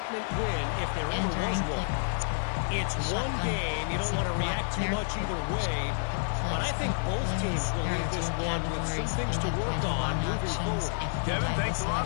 win, if there ever was one. It's one game. You don't want to react too much either way. But I think both teams will leave this one with some things to work on moving forward. Kevin, thanks a lot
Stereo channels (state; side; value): silent; right; digital silence